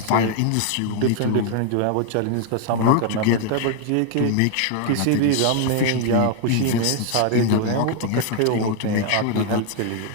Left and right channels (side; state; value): both; different; correlation 0.00